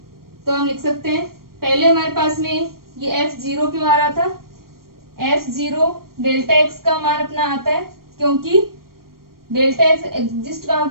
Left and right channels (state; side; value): late; left; 0.93 ms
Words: तो हम लिख सकते हैं, पहले हमारे पास में ये एफ जीरो क्यों आ रहा था, एफ जीरो डेल्टा एक्स का मान अपना आता है, क्योंकि डेल्टा एक्स एग्जिस्ट कहां